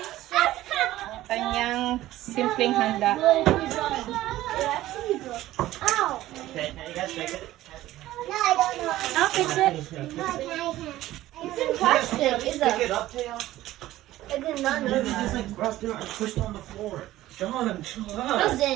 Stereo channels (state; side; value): quieter; left; 15.2 dB